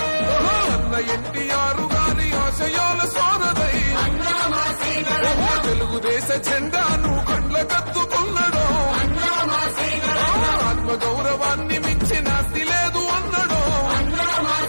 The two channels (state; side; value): inverted; both; correlation -1.00